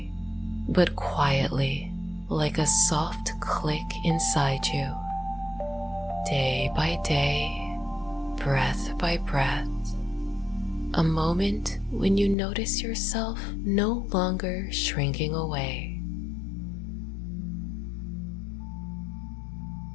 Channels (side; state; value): right; drops out; at 12.4 s